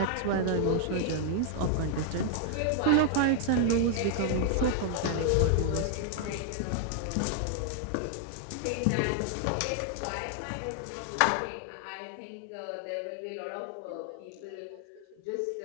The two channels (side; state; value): both; different; correlation 0.00